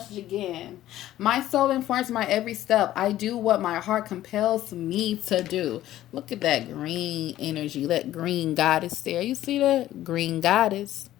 again. My soul informs my every step. I do what my heart compels me to do. Look at that green energy. That green goddess there. You see that? Green goddess.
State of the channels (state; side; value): quieter; right; 13.8 dB